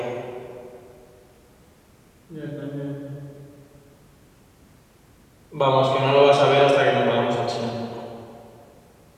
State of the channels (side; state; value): both; identical; correlation 1.00